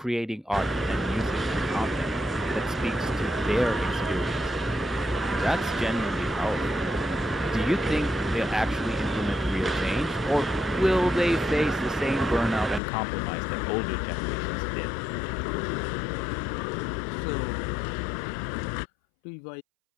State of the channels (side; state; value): right; drops out; at 12.8 s